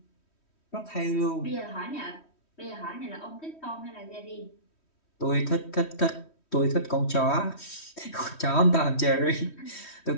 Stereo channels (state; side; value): late; right; 3.1 ms